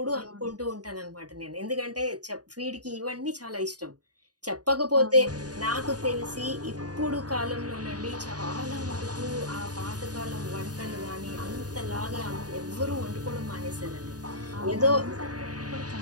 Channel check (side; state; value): left; late; 0.68 ms